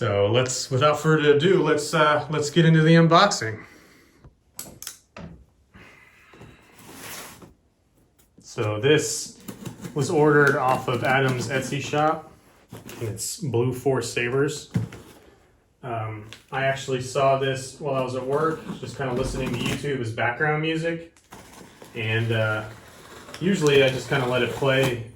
without further ado, let's get into the unboxing. So this was ordered off of Adam's Etsy shop. It's Blue Force Sabers. I actually saw this while I was at work, just kind of listening to YouTube as background music. And usually I just kind of let it play,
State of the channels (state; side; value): identical; both; correlation 1.00